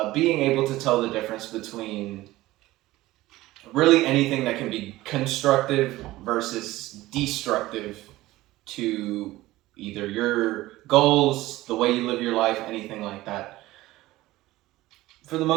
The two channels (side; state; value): left; quieter; 17.5 dB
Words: being able to tell the difference between really anything that can be constructive versus destructive to either your goals, the way you live your life, anything like that. For the